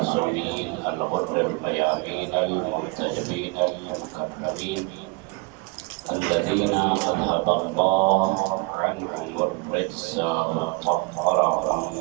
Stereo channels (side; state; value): left; quieter; 27.8 dB